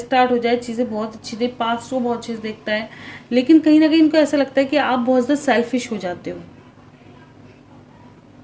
स्टार्ट हो जाए, चीज़ें बहुत अच्छी दे, पास्ट को बहुत चीज़ देखता है, लेकिन कहीं ना कहीं इनको ऐसा लगता है कि आप बहुत ज़्यादा सेल्फिश हो जाते हो,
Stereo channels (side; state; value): both; identical; correlation 1.00